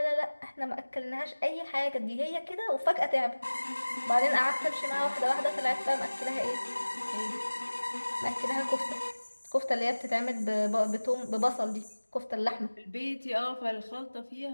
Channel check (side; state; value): both; inverted; correlation -1.00